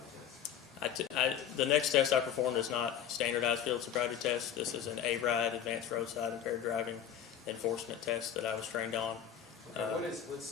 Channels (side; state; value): right; quieter; 9.3 dB